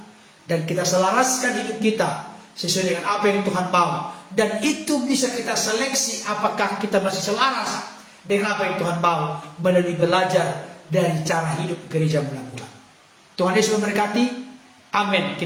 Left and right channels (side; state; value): both; identical; correlation 1.00